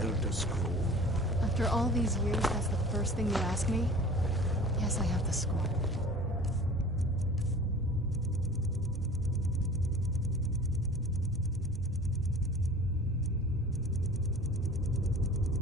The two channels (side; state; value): both; normal; correlation 0.42